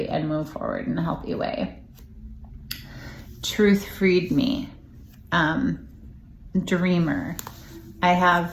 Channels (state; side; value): identical; both; correlation 1.00